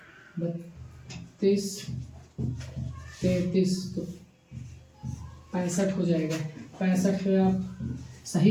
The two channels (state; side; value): identical; both; correlation 1.00